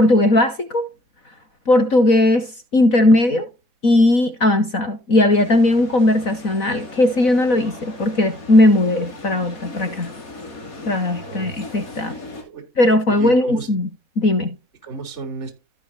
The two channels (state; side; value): late; right; 4.0 ms